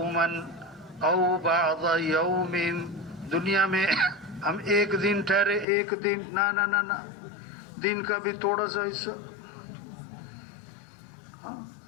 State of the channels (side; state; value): right; drops out; at 5.7 s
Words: او بعض یوم، دنیا میں ہم ایک دن ٹھہرے، ایک دن، نہ دن کا بھی تھوڑا سا حصہ۔